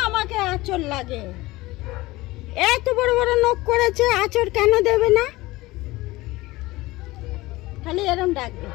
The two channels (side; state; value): right; quieter; 19.8 dB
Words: আমাকে আঁচড় লাগে। এত বড় বড় নখ করেছে, আঁচড় কেন দেবে না? খালি এরম ডাকবে।